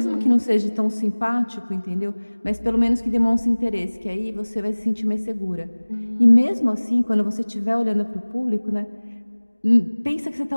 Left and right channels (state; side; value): inverted; both; correlation -1.00